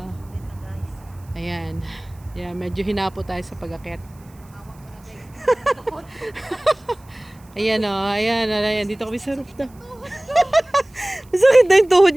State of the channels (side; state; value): right; noise; hiss, 29 dB below the sound